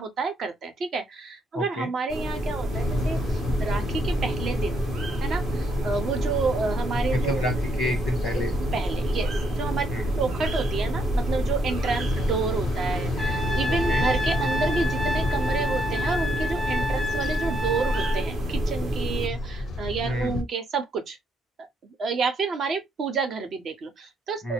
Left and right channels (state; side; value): normal; both; correlation 0.74